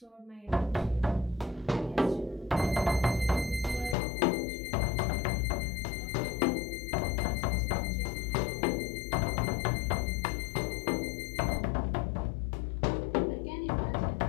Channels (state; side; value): drops out; right; at 4.0 s